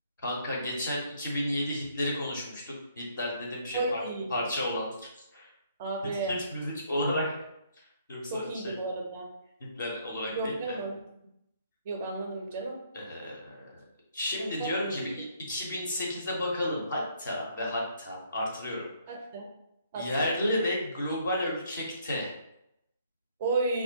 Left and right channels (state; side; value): inverted; both; correlation -0.66